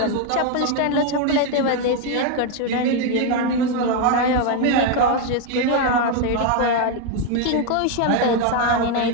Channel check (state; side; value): different; both; correlation 0.01